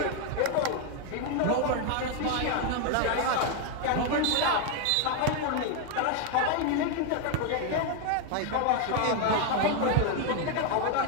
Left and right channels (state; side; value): different; both; correlation 0.01